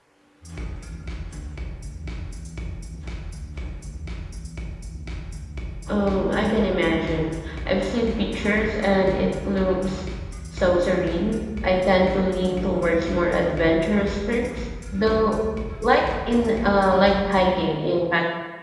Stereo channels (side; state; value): both; identical; correlation 1.00